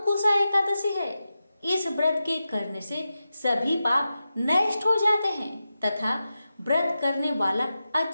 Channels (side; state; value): both; inverted; correlation -0.91